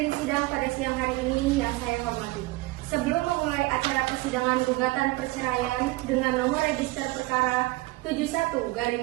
sidang pada siang hari ini yang saya hormati. Sebelum memulai acara persidangan gugatan perceraian dengan nomor register perkara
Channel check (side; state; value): left; quieter; 21.0 dB